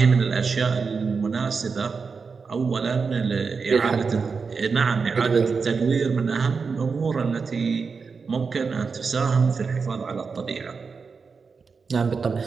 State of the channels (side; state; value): left; quieter; 5.1 dB